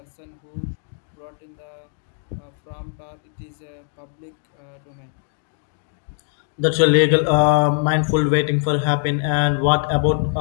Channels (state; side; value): silent; right; digital silence